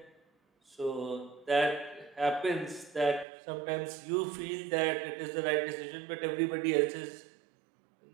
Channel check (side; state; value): left; drops out; at 3.2 s